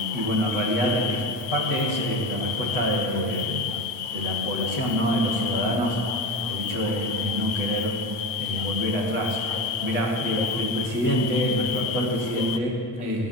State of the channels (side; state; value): right; late; 9.1 ms